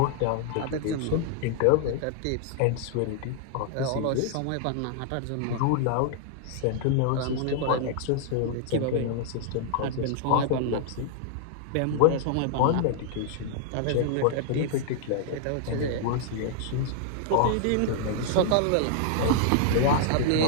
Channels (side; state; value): both; different; correlation -0.01